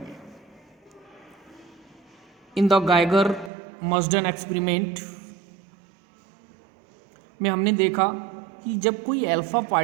इन द गाइगर मर्जन एक्सपेरिमेंट में हमने देखा कि जब कोई अल्फा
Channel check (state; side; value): drops out; left; at 3.5 s